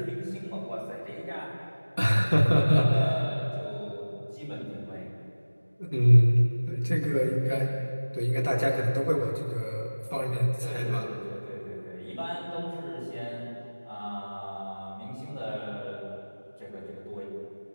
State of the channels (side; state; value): both; inverted; correlation -1.00